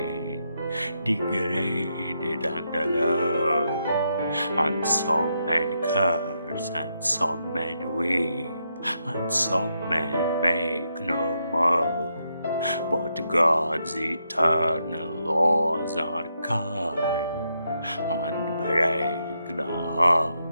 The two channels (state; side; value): inverted; both; correlation -0.81